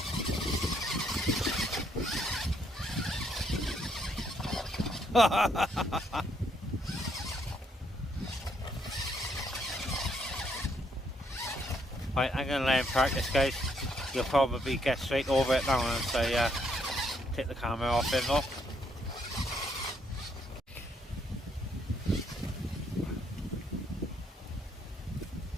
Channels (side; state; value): both; normal; correlation 0.72